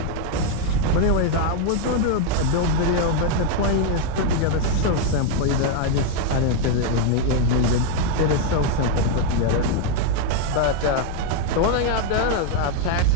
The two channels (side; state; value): both; different; correlation 0.01